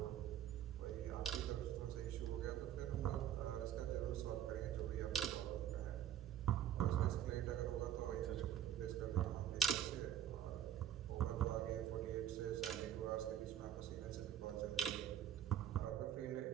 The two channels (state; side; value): quieter; left; 10.4 dB